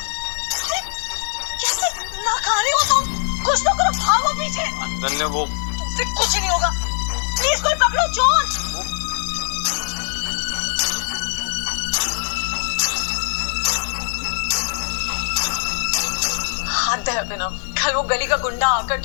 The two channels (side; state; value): right; silent; 65 dB below the other